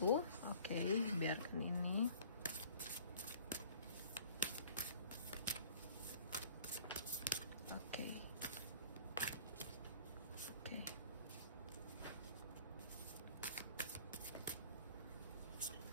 Oke, biarkan ini. Oke.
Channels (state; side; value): inverted; both; correlation -0.49